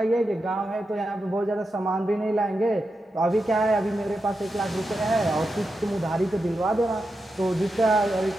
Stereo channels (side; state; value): both; normal; correlation 0.88